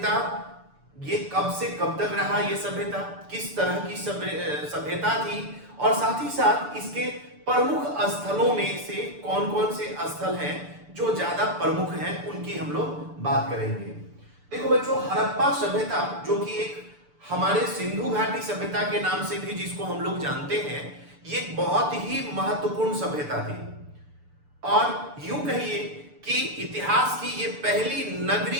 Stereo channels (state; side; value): late; left; 6.8 ms